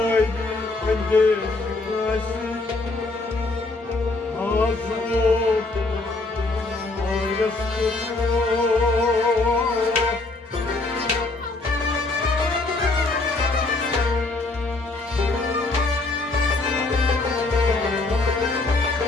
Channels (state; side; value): quieter; right; 3.3 dB